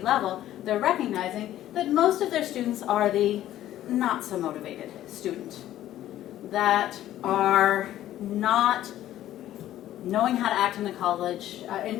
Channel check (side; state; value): right; quieter; 13.1 dB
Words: level, they're recognizing that most of their students are the not so motivated student, that are not knowing how to act in the college,